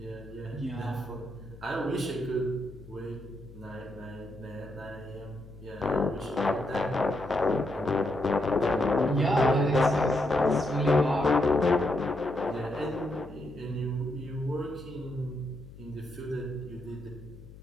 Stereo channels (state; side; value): noise; left; hum, 18 dB below the sound